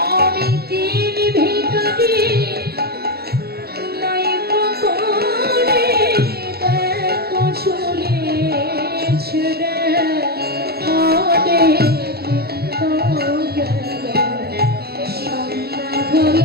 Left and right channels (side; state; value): left; late; 0.46 ms